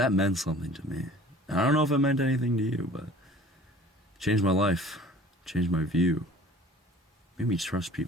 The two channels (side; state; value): both; normal; correlation 0.48